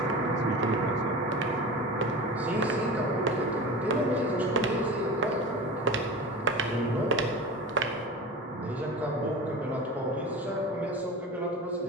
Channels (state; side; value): normal; both; correlation 0.32